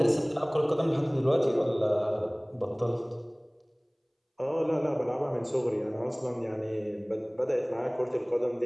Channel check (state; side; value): identical; both; correlation 1.00